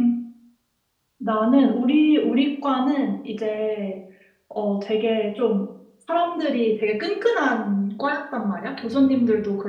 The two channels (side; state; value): both; identical; correlation 1.00